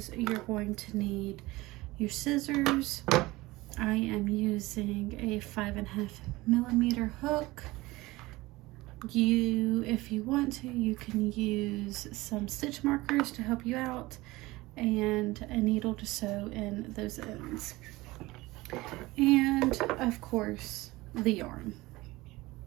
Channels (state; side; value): quieter; left; 20.2 dB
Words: you're going to need your scissors. I am using a 5.5mm hook. If you want to, you can use some stitch markers to help you out and a needle to sew in those ends. And of course, the yarn.